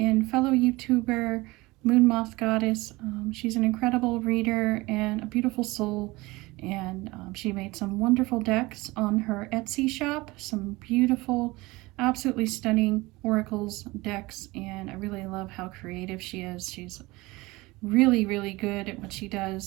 fellow YouTuber, Moon Moth Goddess. She's an incredible reader and a beautiful soul, and she made some wonderful decks on her Etsy shop, some beautiful, absolutely stunning oracles decks, and I really love how creative she is. She's really good at what she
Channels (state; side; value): quieter; left; 21.8 dB